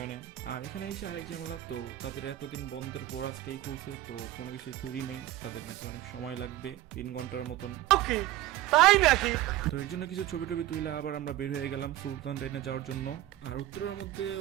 আর এখানে এসে আরেক ঝামেলা, তো তাদের এতদিন বন্ধের পর আজকেই খুলছে, তো কোনো কিছুই তৈরি নেই, তাদের নাকি অনেক সময় লাগবে 3 ঘন্টার মতন। তাই নাকি? তো এর জন্য কিছু ছবি টবি তুলে আবার আমরা বের হয়ে গেলাম সুলতান ডাইনে যাওয়ার জন্য। আর উত্তরের মধ্যে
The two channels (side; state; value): left; quieter; 14.7 dB